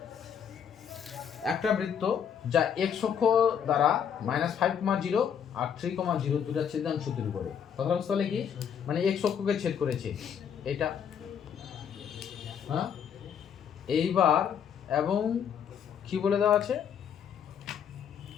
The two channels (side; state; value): right; quieter; 8.0 dB